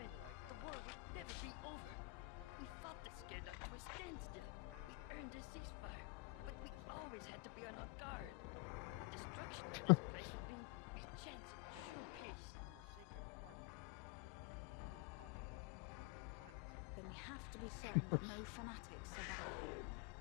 like that line because it comes across a little bit, but just if Joanna said it like this way, it's like, so let me get this straight. It's holy. Because it's just like it's the most sacred parts. It's like the holy parts of this holy planet. Then we have to be certain that no fanatics survive.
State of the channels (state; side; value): quieter; right; 24.7 dB